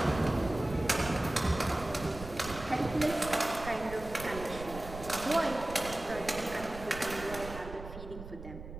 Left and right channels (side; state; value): right; noise; rumble, 12 dB below the sound